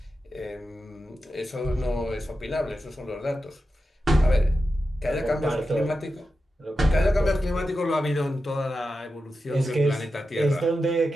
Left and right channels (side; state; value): both; normal; correlation 0.90